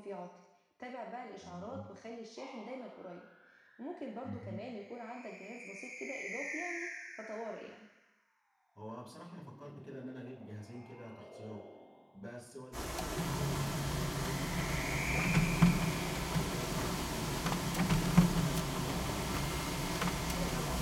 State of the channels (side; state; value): both; identical; correlation 1.00